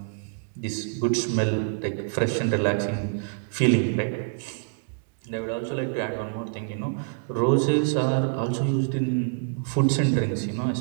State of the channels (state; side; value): silent; left; digital silence